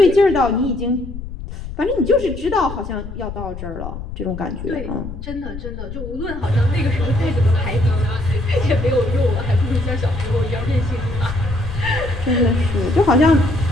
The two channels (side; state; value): left; noise; rumble, 10 dB below the sound